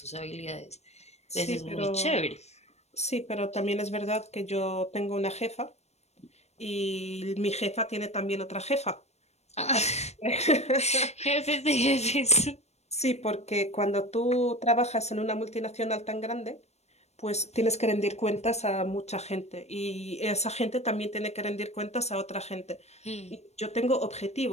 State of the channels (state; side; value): late; right; 0.31 ms